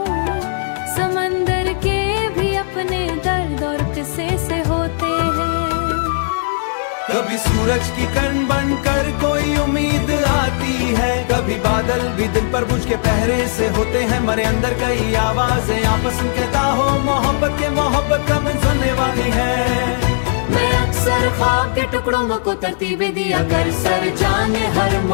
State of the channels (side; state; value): right; silent; 60 dB below the other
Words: समंदर के भी अपने दर्द और किस्से से होते हैं। कभी सूरज की किरण बनकर कोई उम्मीद आती है, कभी बादल भी दिल पर बुझ के पहरे से होते हैं। मरे अंदर कई आवाजें आपस में कहता हो मोहब्बत कब सुनने वाली है। मैं अक्सर ख्वाब के टुकड़ों को तरतीबें दिया कर सर जाने हर